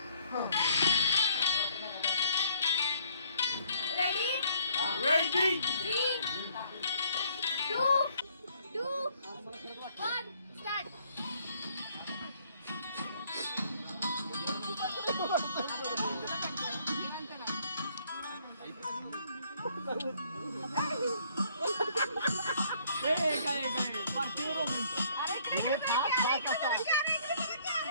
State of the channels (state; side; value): inverted; both; correlation -0.64